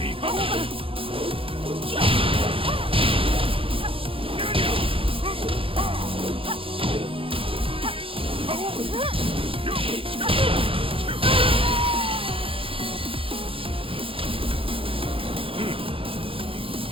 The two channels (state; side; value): late; left; 0.26 ms